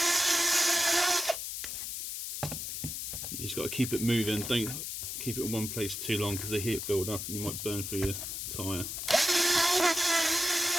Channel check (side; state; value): left; noise; hiss, 5 dB below the sound